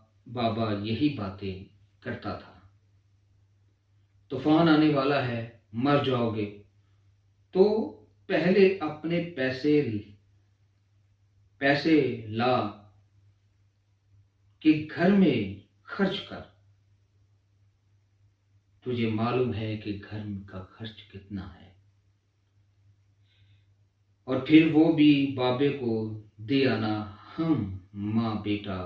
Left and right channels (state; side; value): identical; both; correlation 1.00